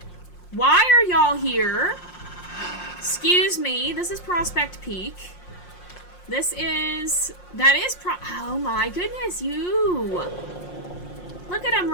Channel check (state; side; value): late; right; 5.6 ms